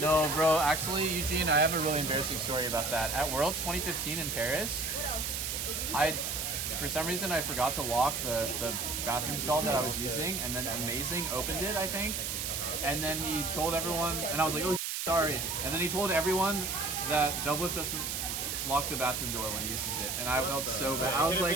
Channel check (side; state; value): right; noise; hiss, 2 dB below the sound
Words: No, bro. Actually, Eugene, I have a really embarrassing story about that. At Worlds 2015 in Paris, What else? for some reason, I forgot to lock the bathroom stall that I was using, and then Amazing opened it, I think. And then he told everyone, and I was like, oh, sorry. And then he told everyone that Doublelift doesn't lock the bathroom door when he uses it. And I felt so bad. I was